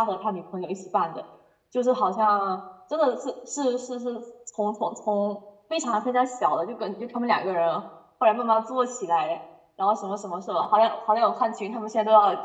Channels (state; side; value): identical; both; correlation 1.00